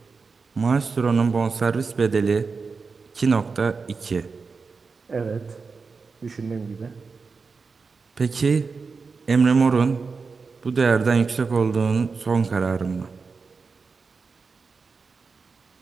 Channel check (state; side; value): quieter; left; 4.7 dB